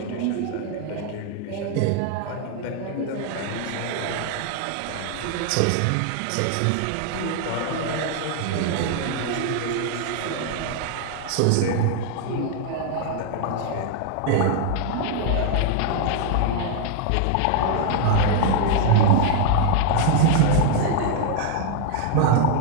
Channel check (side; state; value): both; different; correlation 0.00